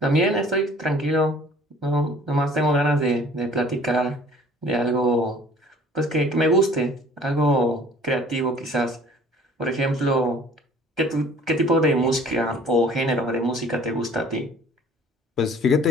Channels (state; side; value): normal; both; correlation 0.52